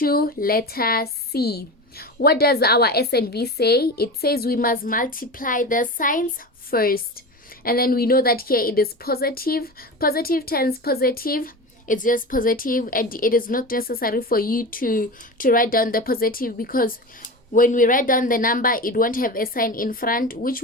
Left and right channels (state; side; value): normal; both; correlation 0.27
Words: letter C. What does our S and V say? It says we must multiply the signs first. And then we know that here it is positive. Positive times positive, it's just positive, and it is not necessary for you to write down the positive, because when we write down the number, it won't have a sign in front, which